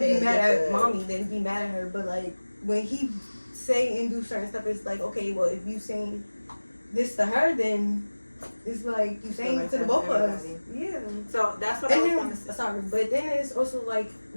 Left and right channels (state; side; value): inverted; both; correlation -1.00